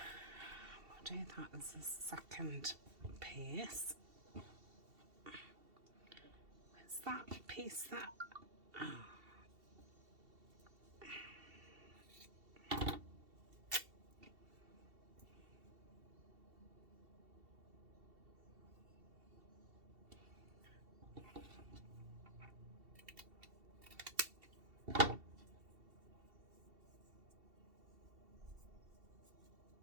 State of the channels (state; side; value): late; left; 2.7 ms